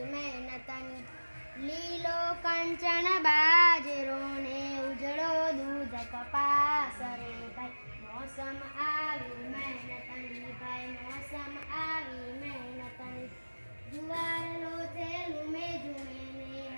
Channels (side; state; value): both; inverted; correlation -1.00